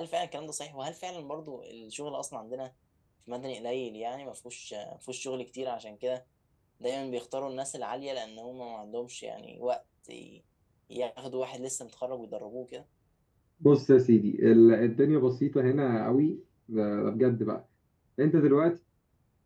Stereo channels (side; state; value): both; identical; correlation 1.00